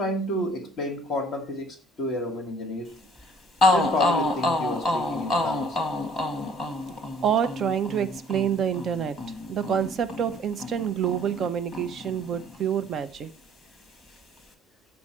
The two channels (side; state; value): both; normal; correlation 0.56